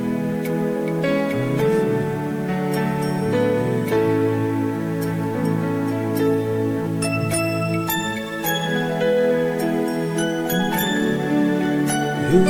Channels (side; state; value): both; identical; correlation 1.00